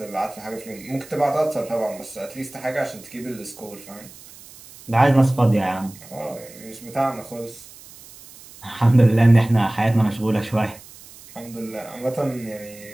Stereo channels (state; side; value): noise; right; hiss, 20 dB below the sound